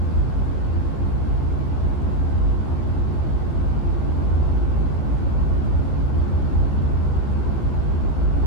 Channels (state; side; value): late; right; 15 ms